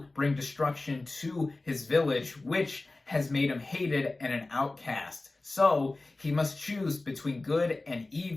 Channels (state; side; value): quieter; right; 3.1 dB